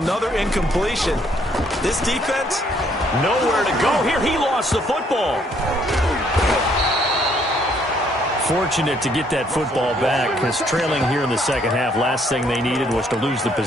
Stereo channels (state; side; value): normal; both; correlation 0.67